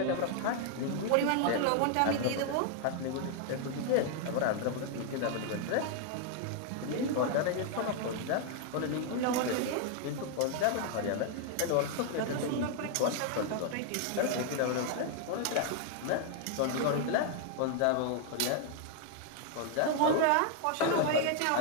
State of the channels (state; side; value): different; both; correlation 0.00